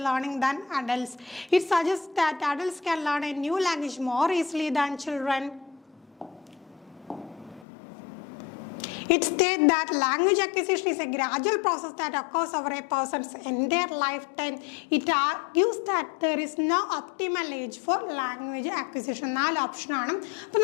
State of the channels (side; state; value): right; drops out; at 7.7 s